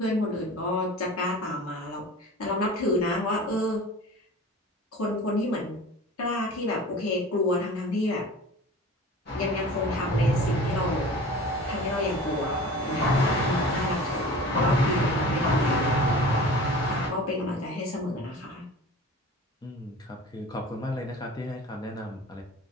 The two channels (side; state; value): both; normal; correlation 0.39